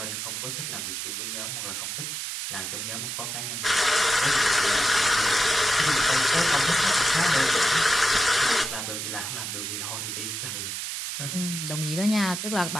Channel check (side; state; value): right; noise; hiss, 4 dB below the sound